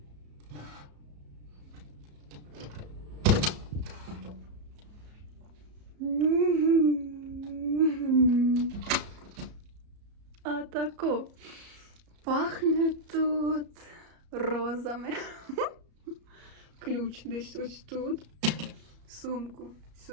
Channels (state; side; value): late; left; 34 ms